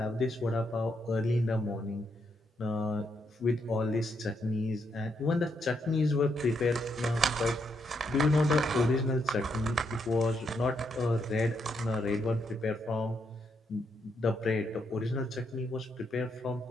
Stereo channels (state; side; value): normal; both; correlation 0.78